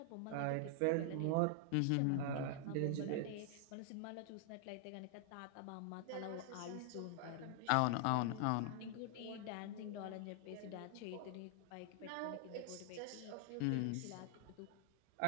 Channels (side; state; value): both; different; correlation 0.00